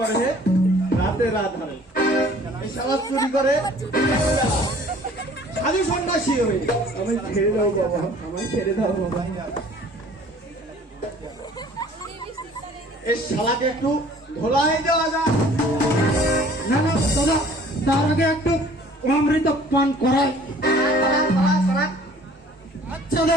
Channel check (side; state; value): both; normal; correlation 0.52